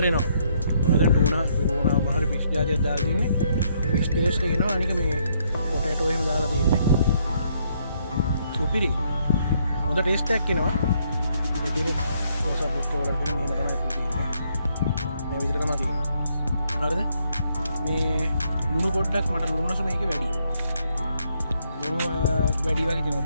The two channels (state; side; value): inverted; both; correlation -0.72